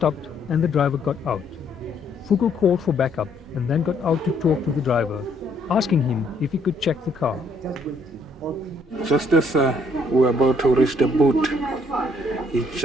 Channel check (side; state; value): both; normal; correlation 0.67